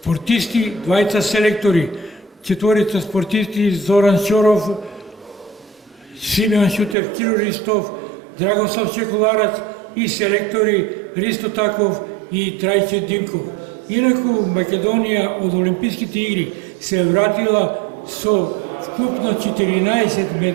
2 селектори, 4 спортисти Зоран Шоров, Симеон Шутев, Киро Ристов, Драгослав Чекуларац и селектори Ристо Таков и Трајче Димков. Инаку Македонија од Олимписките игри се вратила со вкупно 14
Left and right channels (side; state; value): left; drops out; at 7.0 s